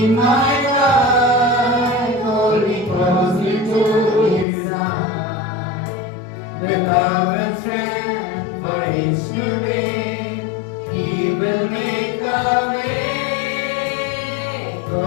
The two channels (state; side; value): drops out; right; at 4.5 s